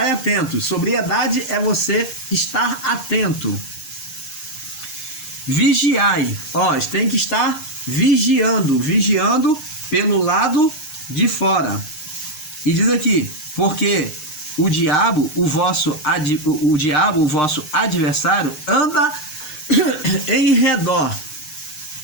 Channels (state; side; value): late; right; 6.6 ms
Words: atento. Sobriedade é você estar atento. Vigiai. Tem que estar vigiando. Vigiando pelo lado de fora. E diz aqui, porque o diabo, o vosso adversário, anda em redor,